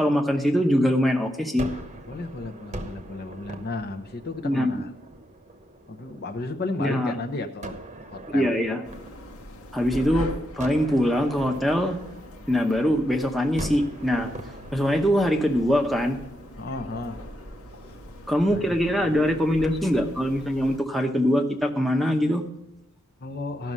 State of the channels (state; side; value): normal; both; correlation 0.83